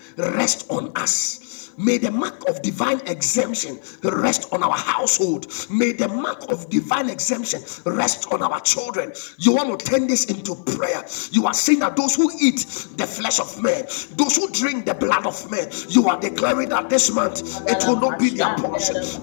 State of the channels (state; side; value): silent; right; digital silence